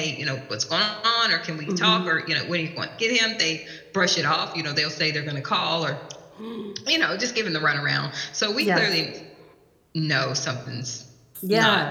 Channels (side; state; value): both; identical; correlation 1.00